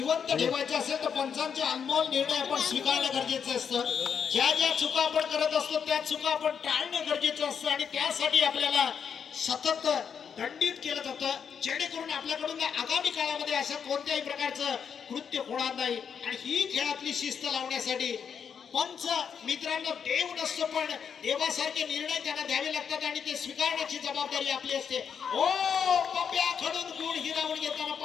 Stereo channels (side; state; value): right; quieter; 7.1 dB